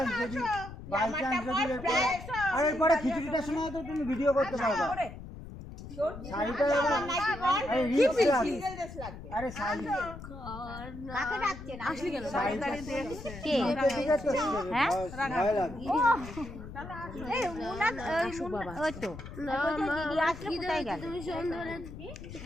যদি এরপরে আর এরপরে খিচুড়িটা শোনাও তো তুমি ভিডিও করতে পারবে। শাড়িটা আরে রিক্স লাগবে। আরে শাড়ি কাকে ডাকছে না আসলি কেন? শাড়িটা কে ঠিক আছে হ্যাঁ ভয় লাগবে। এই মুনা ওই তো দিদি আসলে কোথায় গেল?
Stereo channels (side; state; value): left; noise; rumble, 12 dB below the sound